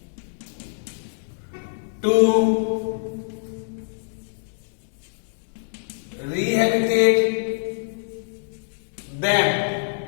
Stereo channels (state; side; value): silent; right; digital silence